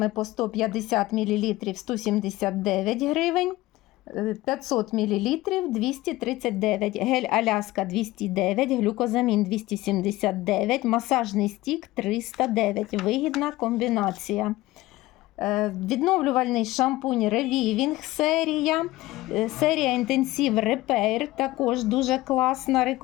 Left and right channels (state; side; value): quieter; right; 18.0 dB